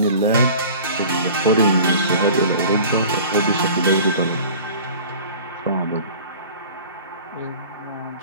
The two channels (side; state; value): both; inverted; correlation -0.42